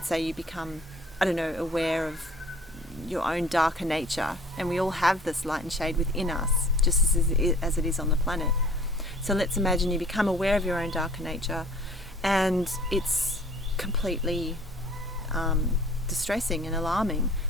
say you become, aware of your own darker nature, and we all have this light and shade within us, just as it is on the planet. So let's imagine you become aware of your own darker nature, and it's completely distressing and alarming.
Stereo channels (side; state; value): both; normal; correlation 0.50